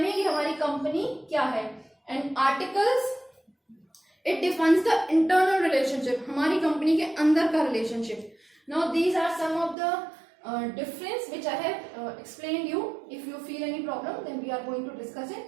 कि हमारी कंपनी क्या है। And articles it defines the internal relationship, हमारी कंपनी के अंदर का relationship. Now these are some of the difference which I have explained you. If you feel any problem then we are going to discuss it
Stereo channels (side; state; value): left; drops out; at 9.8 s